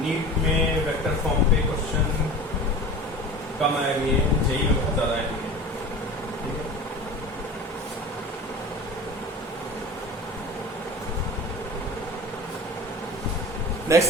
नीट में वेक्टर फॉर्म पे क्वेश्चन कम आएंगे, जेई में बहुत ज्यादा आएंगे। ठीक है,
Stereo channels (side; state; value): both; normal; correlation 0.36